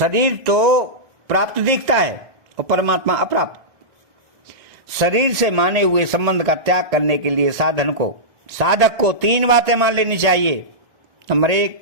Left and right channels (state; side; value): late; left; 1.6 ms